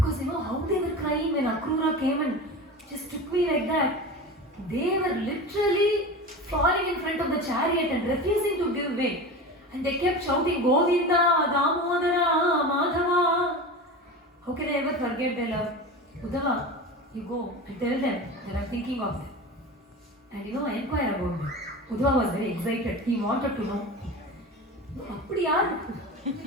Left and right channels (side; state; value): both; normal; correlation 0.29